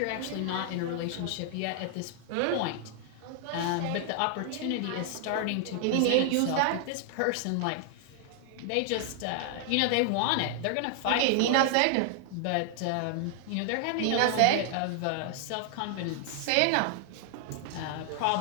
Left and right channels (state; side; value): different; both; correlation 0.00